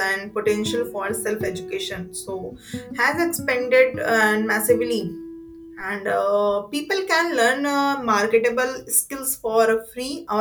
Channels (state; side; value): identical; both; correlation 1.00